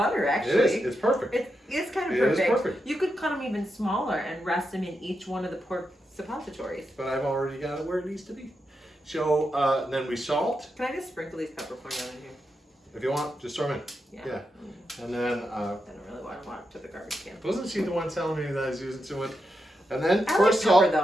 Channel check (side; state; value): both; normal; correlation 0.86